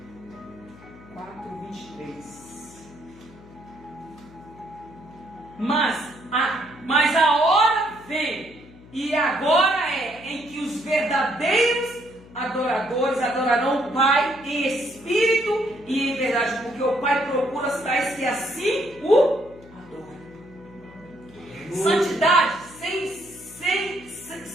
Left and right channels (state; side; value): noise; left; hum, 22 dB below the sound